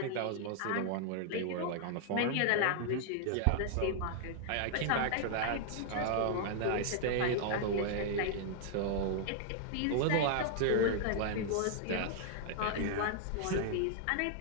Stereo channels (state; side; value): different; both; correlation 0.00